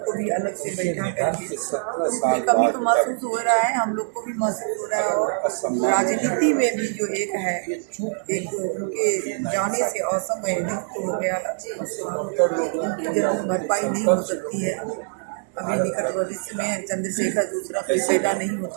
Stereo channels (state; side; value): silent; left; digital silence